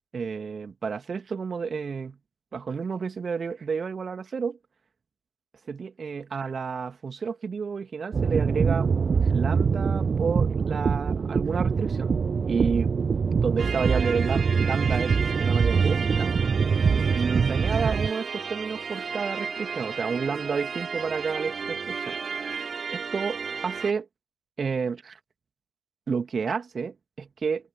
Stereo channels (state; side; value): quieter; left; 5.3 dB